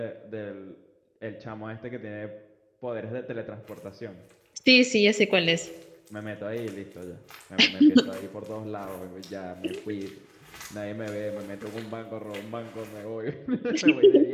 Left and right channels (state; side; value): identical; both; correlation 1.00